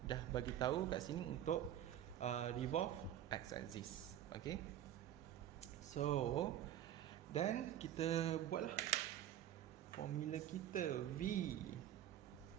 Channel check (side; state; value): left; quieter; 11.4 dB